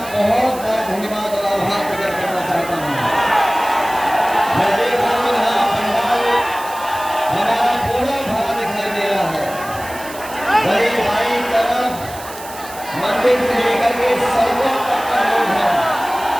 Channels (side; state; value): right; noise; hiss, 15 dB below the sound